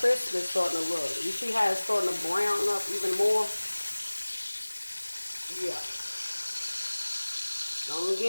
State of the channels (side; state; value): both; inverted; correlation -1.00